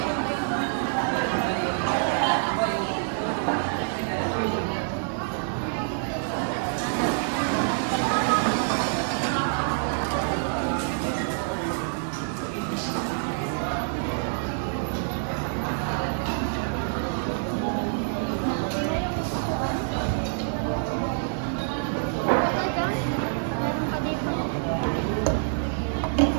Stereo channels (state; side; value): silent; left; digital silence